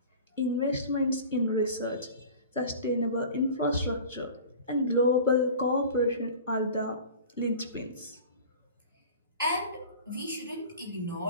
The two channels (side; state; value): both; inverted; correlation -0.39